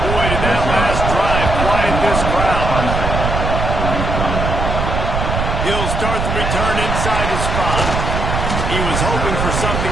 boy, did that last drive quiet this crowd. He'll start the return inside his 5. He was hoping for something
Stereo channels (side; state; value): right; noise; rumble, 1 dB below the sound